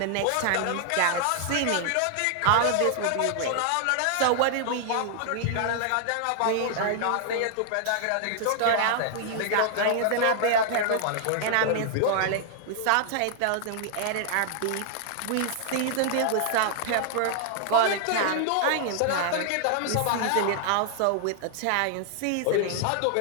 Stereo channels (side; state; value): both; different; correlation 0.00